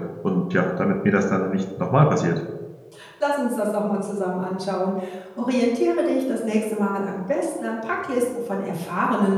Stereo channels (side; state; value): both; identical; correlation 1.00